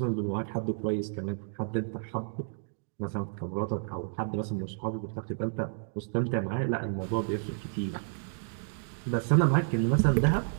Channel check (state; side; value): silent; left; digital silence